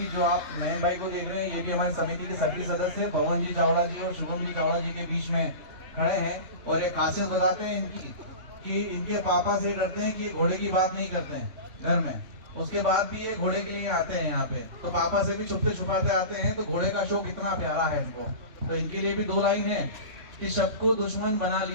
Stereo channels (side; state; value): left; late; 3.5 ms